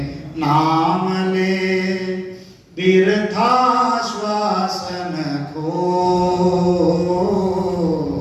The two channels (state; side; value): identical; both; correlation 1.00